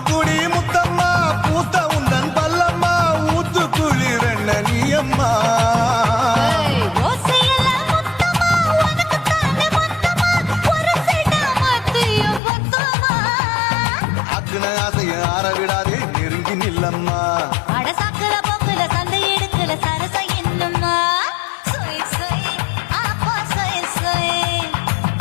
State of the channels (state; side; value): drops out; right; at 12.4 s